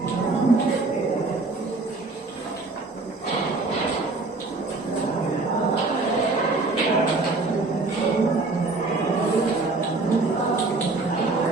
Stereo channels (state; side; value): quieter; left; 3.5 dB